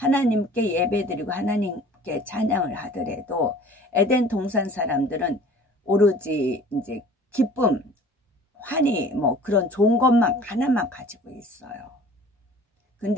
예배드리고 하나님께 찬양을 하더라도 에덴 동산 사람들은 오로지 이제 기쁨, 환희 뭐 그런 좋은 것만 하나만 가지고 있어요.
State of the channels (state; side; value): normal; both; correlation 0.47